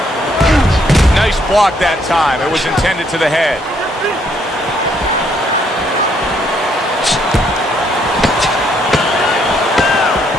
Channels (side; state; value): both; normal; correlation 0.70